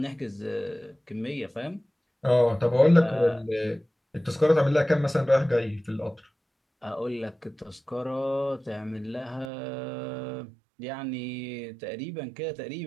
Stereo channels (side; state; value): left; drops out; at 9.5 s